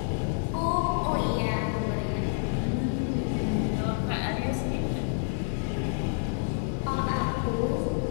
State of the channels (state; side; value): silent; right; digital silence